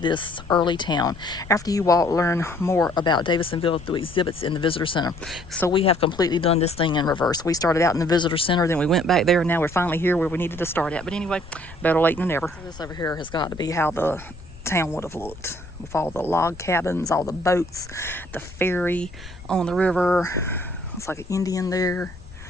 early town. After you walk, learn more about Davidsonville through exhibits in the visitor center. So we have completely done this thing in reverse. We started out in the visitor center, then we went back there, and now we're finally here where we needed to start at. But anyway, better late than never. So this over here has got to be how the town would have looked, with all the log cabins, all the boats, the ferry on the river. It's like an Indian there.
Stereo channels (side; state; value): left; noise; rumble, 17 dB below the sound